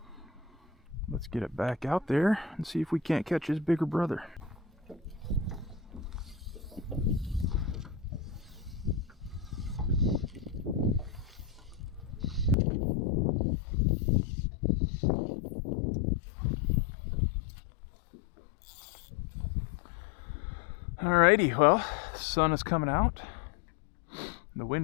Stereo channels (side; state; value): right; drops out; at 12.6 s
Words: Let's get it back out there and see if we can't catch his bigger brother. Alrighty, well, the sun is coming out. The